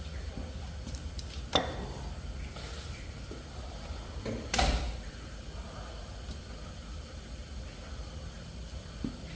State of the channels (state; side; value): identical; both; correlation 1.00